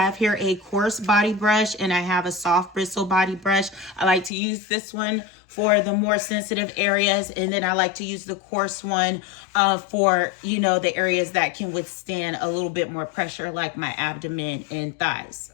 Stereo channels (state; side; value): drops out; right; at 4.3 s